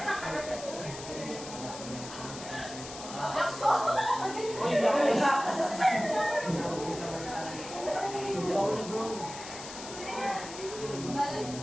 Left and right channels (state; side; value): noise; left; hiss, 12 dB below the sound